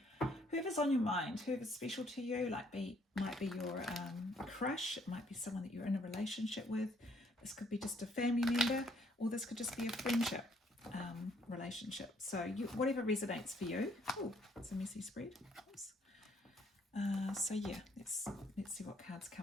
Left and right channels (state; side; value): normal; both; correlation 0.65